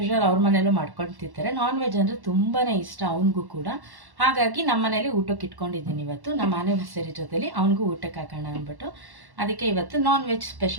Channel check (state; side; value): late; left; 1.1 ms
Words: ಅವ್ರ ಮನೇಲೂ ಮಾಡ್ಕೊಂಡು ತಿಂತಾರೆ. ನಾನ್ ವೆಜ್ ಅಂದರೆ ತುಂಬಾ ಇಷ್ಟ ಅವನಿಗೂ ಕೂಡ. ಹಾಗಾಗಿ ನಮ್ಮ ಮನೇಲಿ ಊಟಕ್ಕೆ ಇಟ್ಕೊಂಡಿದ್ದೀನಿ ಇವತ್ತು, ನಮ್ಮ ಆ್ಯನಿವರ್ಸರಿ ಜೊತೆಲಿ ಅವ್ನಿಗೂ ಊಟಕ್ಕೆ ಹಾಕೋಣ ಅಂದ್ಬಿಟ್ಟು. ಅದಕ್ಕೆ ಇವತ್ತು ನಾನ್ ವೆಜ್